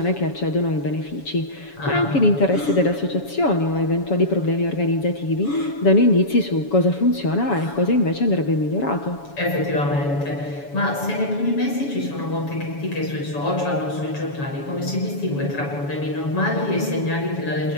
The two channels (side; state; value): right; late; 7.1 ms